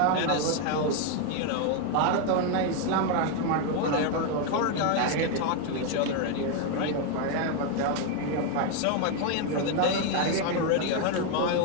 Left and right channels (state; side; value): different; both; correlation 0.01